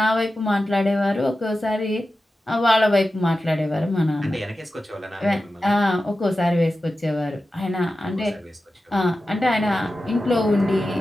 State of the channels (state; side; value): normal; both; correlation 0.93